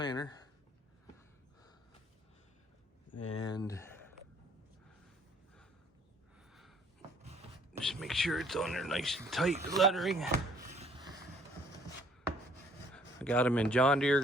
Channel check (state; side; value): normal; both; correlation 0.59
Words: And just make sure it's on there nice and tight, the lettering. I got them in John Deere